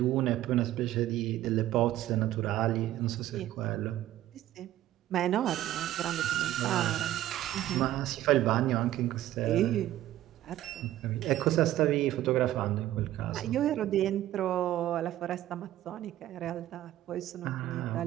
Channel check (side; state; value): left; quieter; 13.8 dB